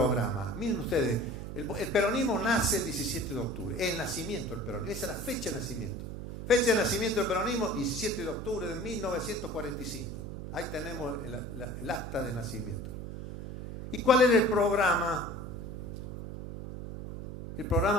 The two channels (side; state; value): right; noise; hum, 7 dB below the sound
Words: Miren ustedes, el peronismo nace el 17 de octubre, el nacimiento del peronismo, esa es la fecha de nacimiento. Fecha de nacimiento del peronismo, 17 de octubre de 1945. Ahí tenemos el acta de nacimiento. ¿Y cuál era el programa? El